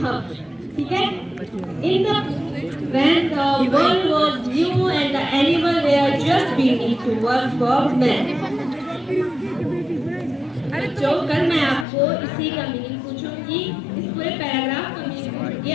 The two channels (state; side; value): drops out; right; at 11.9 s